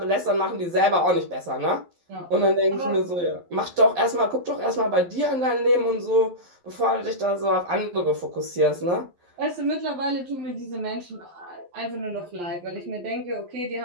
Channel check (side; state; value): left; late; 11 ms